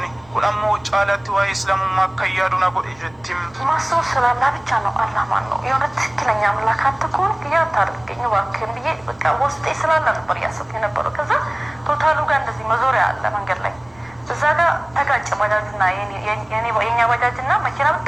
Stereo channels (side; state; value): right; noise; rumble, 29 dB below the sound